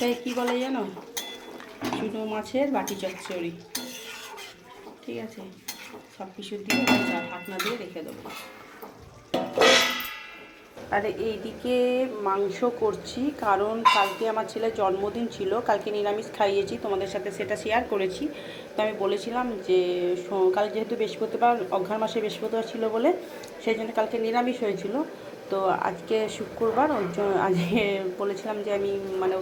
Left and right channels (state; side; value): identical; both; correlation 1.00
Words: কী বলে জানো? চুনো মাছের বাটি চচ্চড়ি। ঠিক আছে, সব কিছু দিয়ে ঢাকনা দিয়ে রেখে দেবো। আর এইদিকে মাংস করছি, কারণ কালকে আমার ছেলের জন্মদিন ছিল। কালকে নিরামিষ খাইয়েছি, তোমাদের সাথে সেটা শেয়ার করেছি। তো আমি বলেছিলাম যে কাল যেহেতু বৃহস্পতিবার, অঘ্রাণ মাসে বৃহস্পতিবার ছিল বলে সেই জন্য কালকে নিরামিষ হয়েছিল। তো আজকে শুক্রবার, ওই জন্য আজকে বলেছিলাম যে আমি মানে